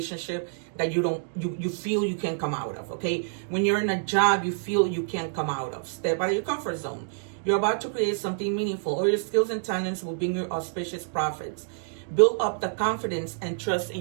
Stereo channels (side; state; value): left; silent; digital silence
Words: that you feel you can't come out of. Okay, when you're in a job you feel you can't come out of. Step out of your comfort zone. You're about to create something meaningful. All your skills and talents will bring you auspicious profits. Build up the confidence and trust